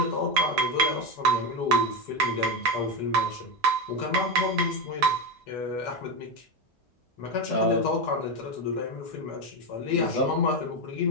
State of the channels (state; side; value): normal; both; correlation 0.14